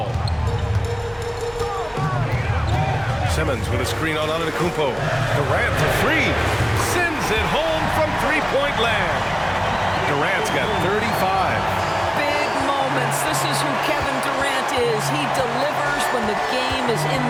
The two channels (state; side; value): identical; both; correlation 1.00